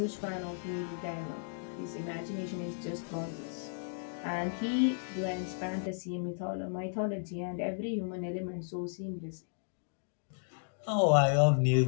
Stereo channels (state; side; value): silent; right; digital silence